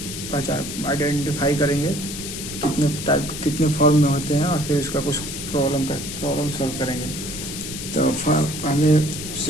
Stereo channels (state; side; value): noise; left; hiss, 8 dB below the sound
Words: पहचान आइडेंटिफाई करेंगे, कितने फॉर्म में होते हैं, और फिर इसका कुछ प्रॉब्लम सॉल्व करेंगे। तो पहले